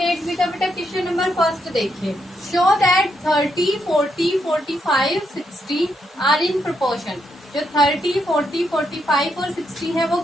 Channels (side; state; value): both; normal; correlation 0.79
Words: 8B का बेटा क्वेश्चन नंबर फर्स्ट देखिए। Show that 30, 40, 45, 60 are in proportion. जो 30, 40, 45 और 60 है वो